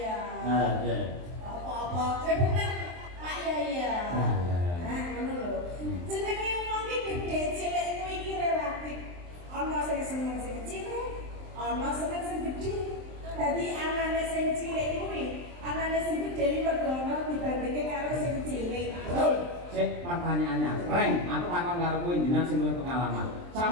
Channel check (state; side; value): late; left; 23 ms